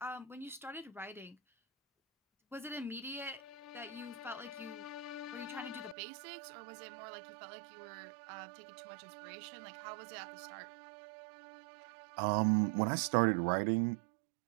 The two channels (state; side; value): drops out; left; at 6.0 s